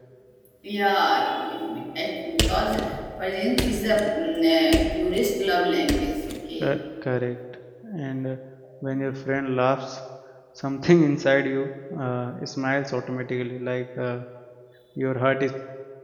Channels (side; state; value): both; identical; correlation 1.00